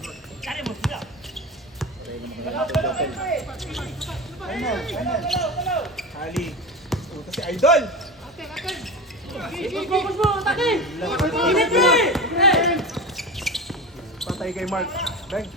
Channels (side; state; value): both; normal; correlation 0.26